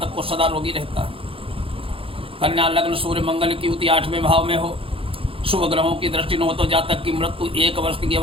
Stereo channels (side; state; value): left; late; 0.27 ms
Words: को सदा रोगी रहता है। कन्या लग्न सूर्य मंगल की युति 8वें भाव में हो, शुभ ग्रहों की दृष्टि न हो तो जातक की मृत्यु 1 वर्ष की